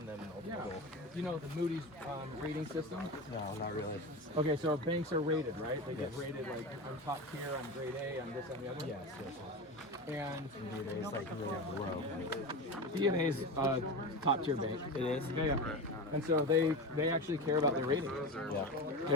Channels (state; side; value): normal; both; correlation 0.25